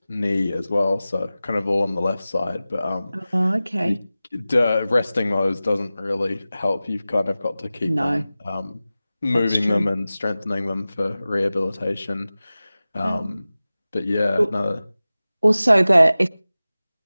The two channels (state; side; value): inverted; both; correlation -0.96